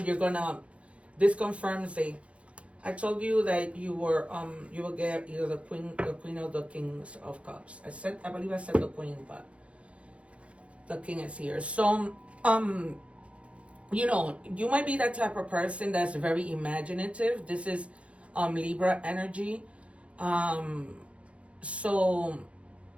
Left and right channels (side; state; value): left; late; 0.062 ms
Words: you're gonna, this confirms I told you that you will get either the queen or the Kings of Cups. I believe I said the Queen, but the King is here. So you know, you might be that type of person that's very imaginative. This is Libra energy. So,